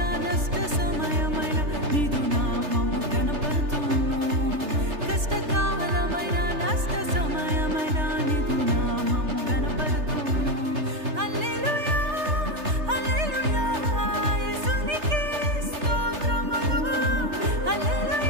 నష్ట సమయమైన నీదు నామము కనపడుతును. కష్టకాలమైన నష్ట సమయమైన నీదు నామము కనపడుతును. హల్లెలూయా హల్లెలూయా యేసునికే స్తోత్రములు.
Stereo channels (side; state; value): left; late; 3.3 ms